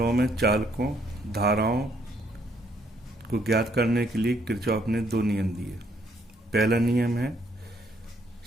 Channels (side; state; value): both; normal; correlation 0.69